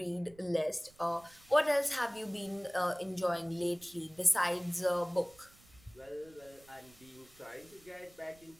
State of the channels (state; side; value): noise; right; rumble, 26 dB below the sound